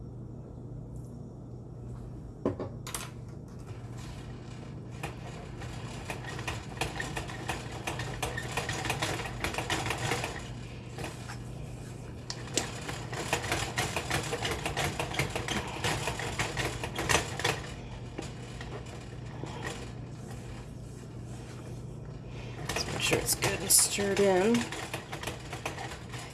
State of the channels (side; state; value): both; identical; correlation 1.00